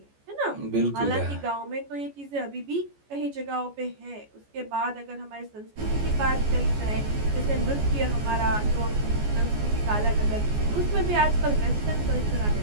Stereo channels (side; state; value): left; late; 14 ms